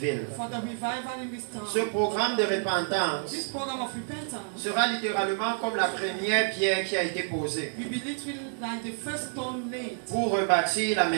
Ce programme de repentance sera littéralement comme la première pierre qui a été posée pour rebâtir la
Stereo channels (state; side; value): silent; left; 59 dB below the other